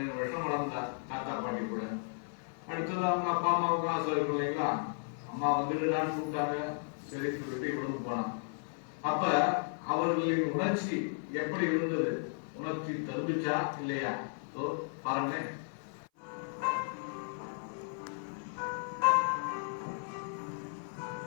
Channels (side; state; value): right; silent; 55 dB below the other